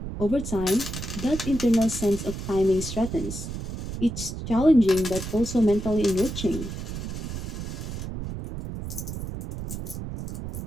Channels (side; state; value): right; noise; rumble, 6 dB below the sound